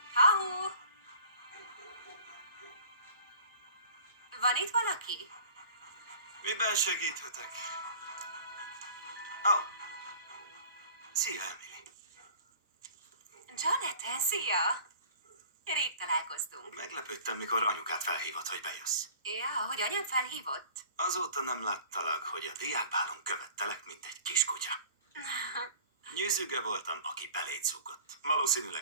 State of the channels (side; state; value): both; inverted; correlation -0.47